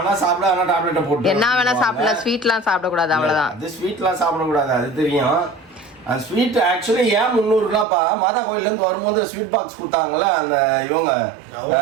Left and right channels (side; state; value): left; drops out; at 7.9 s